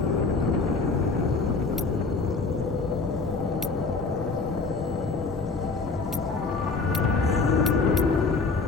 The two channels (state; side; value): quieter; right; 4.1 dB